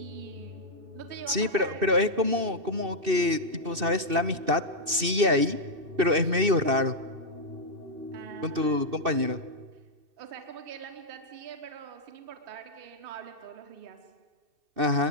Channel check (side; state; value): left; late; 2.6 ms